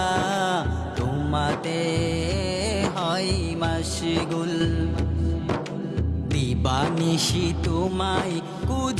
তোমাতে হয় মশগুল। দিবানিশি তোমায়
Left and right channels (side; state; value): both; identical; correlation 1.00